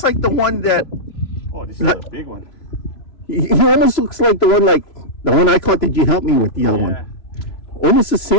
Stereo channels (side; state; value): right; late; 3.0 ms